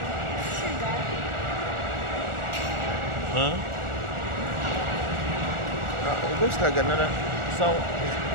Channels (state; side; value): late; left; 1.4 ms